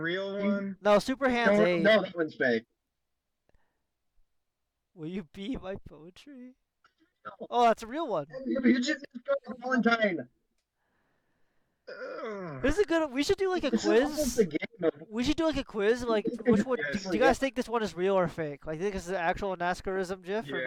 one? No, Super Hands 8. No, that one's fake. Will you be my poetry? Oh, that's a real one. You just Valentine. This is a good. We should do like a This is almost quiz. a game of We should do like a quiz. Like, which one? Yes. Do you guys think this one is real or fake? Like, think this is an actual Naskarism GIF or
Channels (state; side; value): identical; both; correlation 1.00